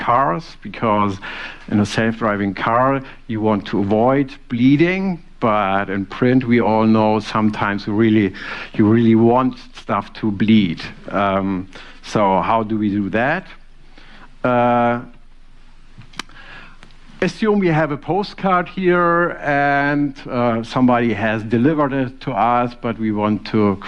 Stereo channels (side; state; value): both; identical; correlation 1.00